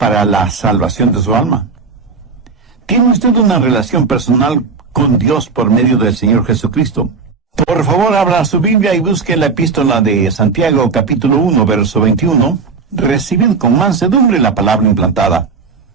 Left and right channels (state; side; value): quieter; left; 4.9 dB